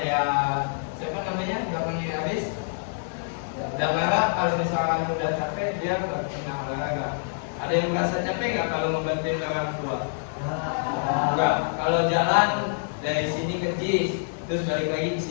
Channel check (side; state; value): right; silent; digital silence